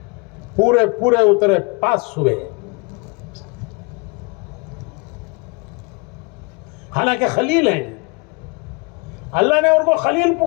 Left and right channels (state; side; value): quieter; right; 29.8 dB